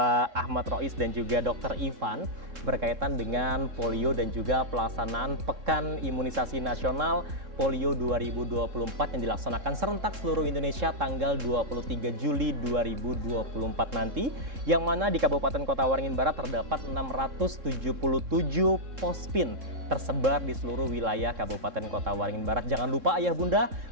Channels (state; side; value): late; left; 3.7 ms